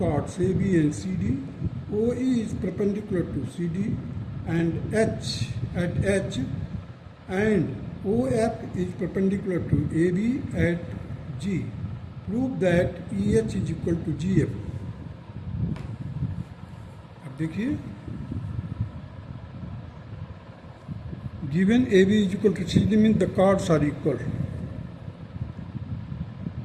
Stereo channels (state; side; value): identical; both; correlation 1.00